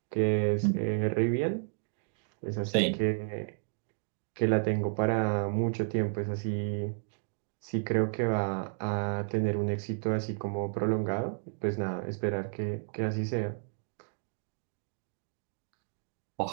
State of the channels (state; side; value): silent; left; digital silence